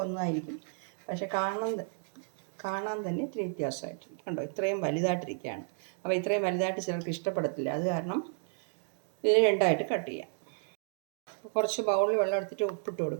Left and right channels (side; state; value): left; silent; digital silence